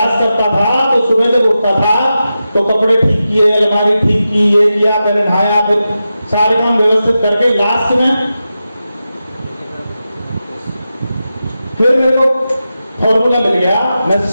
करता था तो सुबह जब उठता था तो कपड़े ठीक किए, अलमारी ठीक की, ये किया, पहले नहाया, फिर सारे काम व्यवस्थित करके लास्ट में फिर मेरे को फॉर्मूला मिल गया। मैं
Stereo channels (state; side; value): inverted; both; correlation -0.91